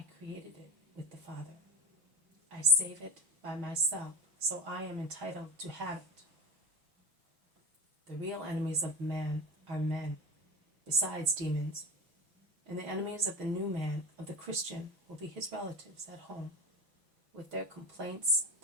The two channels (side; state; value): left; late; 5.9 ms